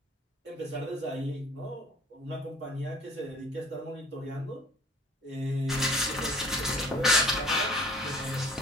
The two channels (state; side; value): normal; both; correlation 0.49